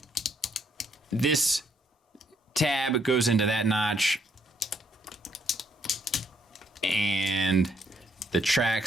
This tab goes into that notch, and the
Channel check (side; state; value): both; normal; correlation 0.71